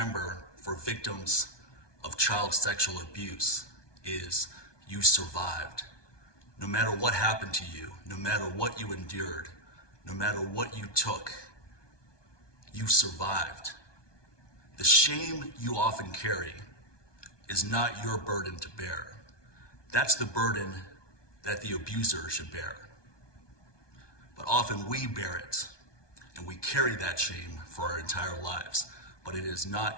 for victims of child sexual abuse is you survived. No matter what happened to you, no matter what you endured, no matter what you took, you survived. The shame you often carry is not your burden to bear. That's the burden that the abuser should bear. But often we bear it, and we carry that shame for our entire lives, but it is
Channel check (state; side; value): late; right; 1.2 ms